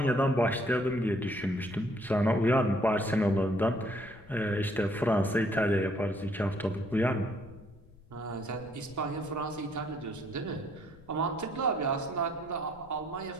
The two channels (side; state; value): left; noise; rumble, 23 dB below the sound